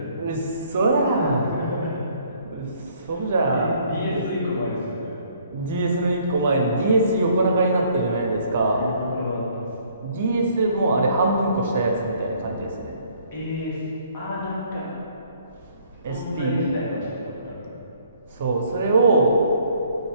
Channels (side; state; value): both; inverted; correlation -0.62